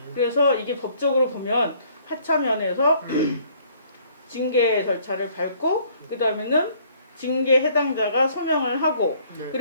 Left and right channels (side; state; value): both; inverted; correlation -0.60